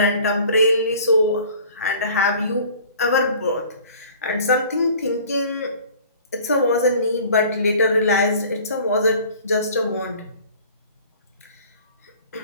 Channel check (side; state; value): both; inverted; correlation -0.48